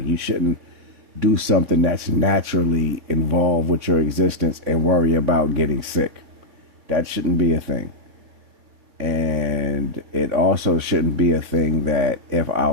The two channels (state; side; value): late; left; 3.6 ms